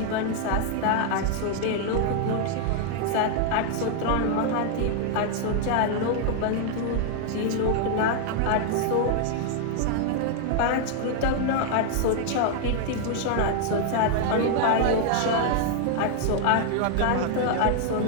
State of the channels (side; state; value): both; different; correlation 0.00